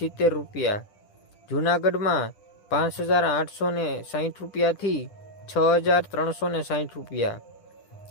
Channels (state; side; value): late; right; 10 ms